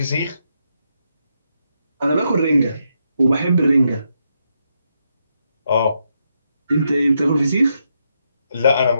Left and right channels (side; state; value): both; inverted; correlation -0.81